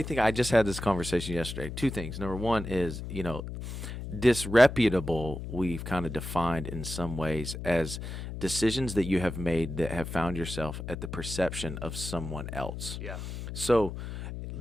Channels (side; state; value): left; noise; hum, 7 dB below the sound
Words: thinking. I just had this conversation yesterday. Two things. Number one is, disreputable, we've kind of defined in some ways as decisions that you have made that have found yourself at the perception of someone else. Yeah. So